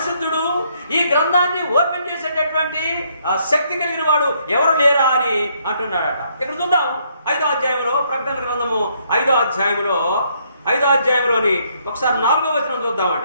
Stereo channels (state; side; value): inverted; both; correlation -0.71